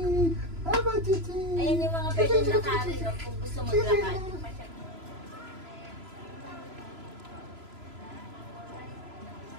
Baba, Chichi! Ayan yung mga pwedeng lakarin, no? Kung gusto maglakad.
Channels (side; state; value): left; late; 3.0 ms